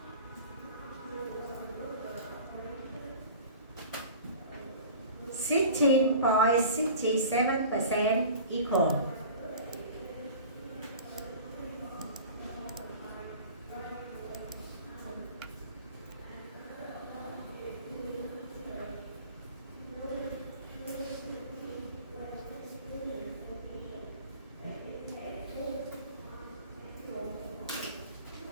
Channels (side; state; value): both; inverted; correlation -0.41